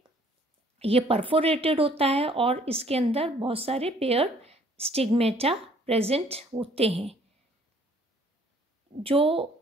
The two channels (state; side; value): normal; both; correlation 0.59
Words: ये परफोरेटेड होता है और इसके अंदर बहुत सारे पेयर स्टिग्मेटा प्रेजेंट होते हैं। जो